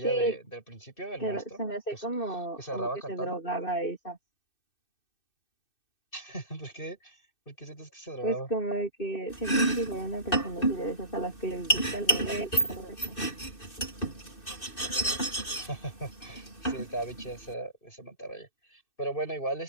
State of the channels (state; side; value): late; right; 2.6 ms